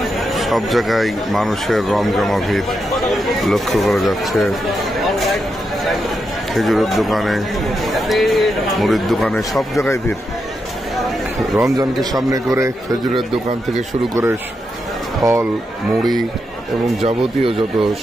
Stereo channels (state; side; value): normal; both; correlation 0.85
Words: সব জায়গায় মানুষের রমজমা ভিড় লক্ষ্য করা যাচ্ছে। খেজুরের দোকানে, মুড়ির দোকানে, সব জায়গায় ভিড়। রমজানকে সামনে করে খেজুরের দোকান থেকে শুরু করে ফল, মুড়ি এবং যাবতীয় যত